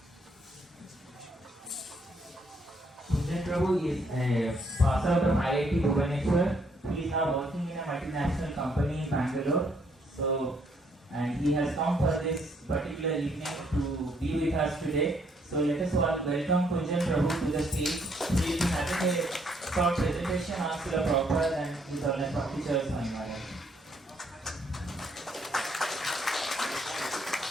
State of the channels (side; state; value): both; normal; correlation 0.69